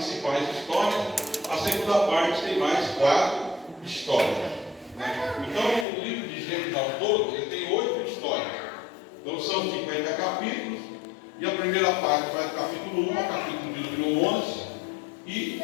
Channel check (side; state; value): right; drops out; at 5.9 s